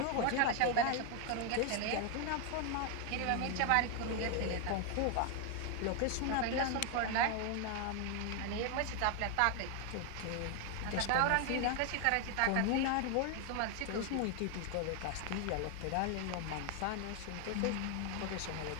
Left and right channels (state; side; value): different; both; correlation 0.01